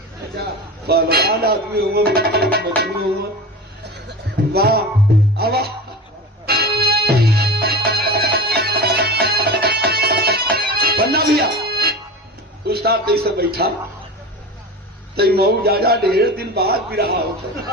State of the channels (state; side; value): normal; both; correlation 0.31